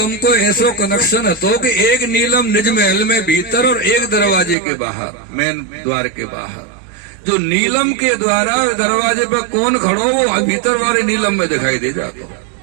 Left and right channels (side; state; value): left; drops out; at 4.5 s